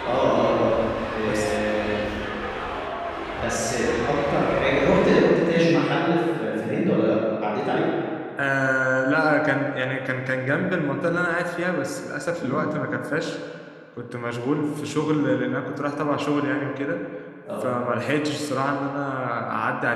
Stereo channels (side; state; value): both; identical; correlation 1.00